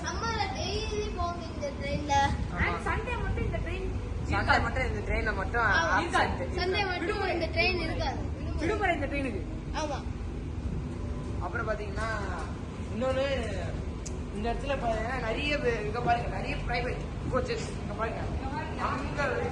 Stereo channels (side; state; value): both; identical; correlation 1.00